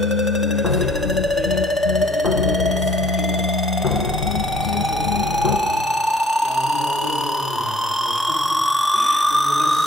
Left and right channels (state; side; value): normal; both; correlation 0.59